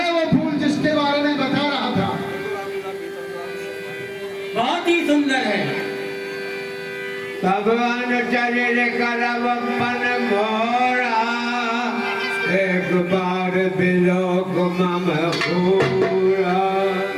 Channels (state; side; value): identical; both; correlation 1.00